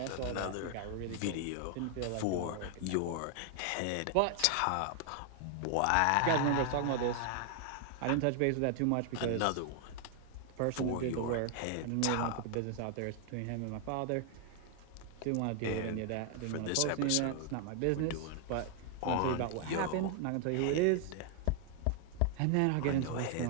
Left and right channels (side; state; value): both; different; correlation 0.00